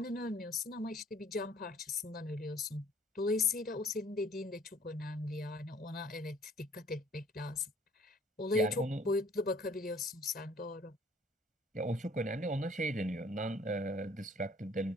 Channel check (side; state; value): both; normal; correlation 0.56